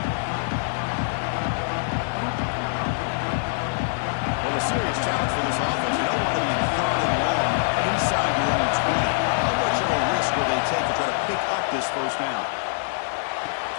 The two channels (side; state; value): right; silent; digital silence